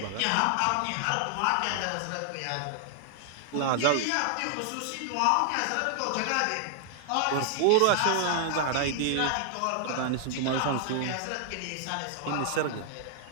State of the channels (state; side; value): different; both; correlation 0.00